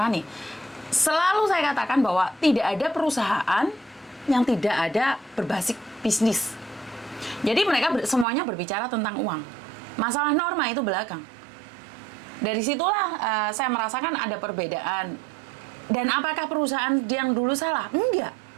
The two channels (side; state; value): left; drops out; at 8.2 s